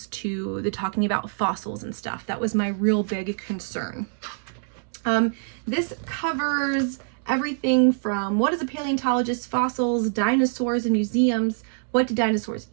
to the talking about fossils and stuff. That was my real big concern. This covers everything from what is a paleontologist, fossils, dinosaurs and museums, what do dinosaurs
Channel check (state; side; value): silent; left; digital silence